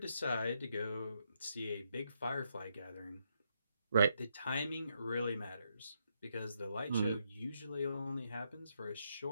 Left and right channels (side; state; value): both; inverted; correlation -0.78